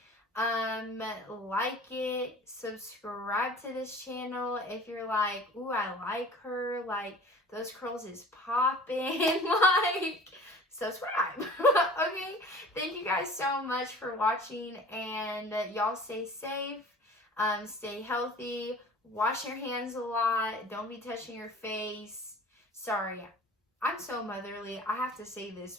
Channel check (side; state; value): both; normal; correlation 0.44